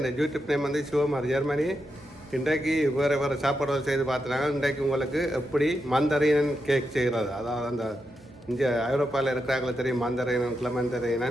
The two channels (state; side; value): normal; both; correlation 0.86